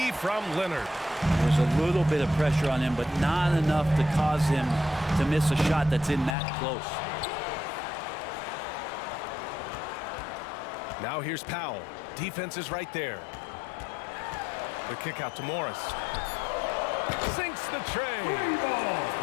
from Leonard. There's a little bit of pressure on him, but not enough to cause him to miss a shot that's in that close. Now here's Powell. Defense is right there. The kick out to Morris. Sinks the tray.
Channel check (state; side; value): drops out; right; at 6.4 s